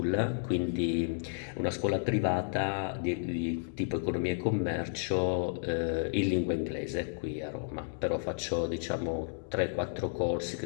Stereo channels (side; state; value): right; silent; digital silence